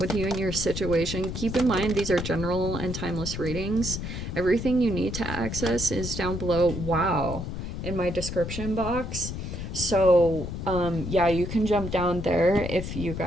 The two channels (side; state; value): left; noise; rumble, 6 dB below the sound